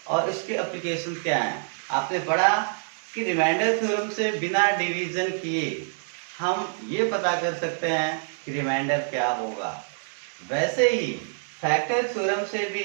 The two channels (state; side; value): silent; left; digital silence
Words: और इसके एप्लीकेशन क्या हैं। आपने पढ़ा कि रिमाइंडर थ्योरम से बिना डिवीजन किए हम ये पता कर सकते हैं कि रिमाइंडर क्या होगा। वैसे ही फैक्टर थ्योरम से भी